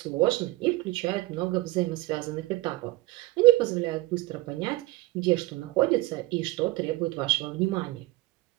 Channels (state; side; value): quieter; left; 19.3 dB